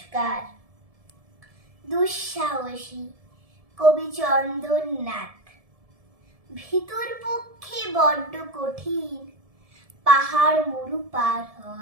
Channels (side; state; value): left; late; 1.7 ms